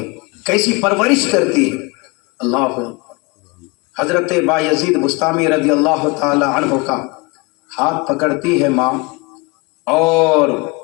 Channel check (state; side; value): quieter; right; 27.1 dB